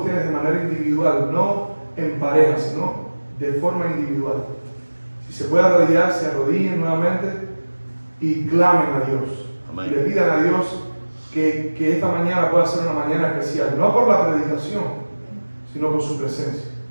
de manera individual, no en pareja, sino de forma individual, si se puede arrodillar, se arrodillen nuevamente y clamen a Dios. Amén. Y le pidan a Dios que esta mañana pueda ser una mañana especial, no por la predicación, sino por su presencia.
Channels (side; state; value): both; inverted; correlation -1.00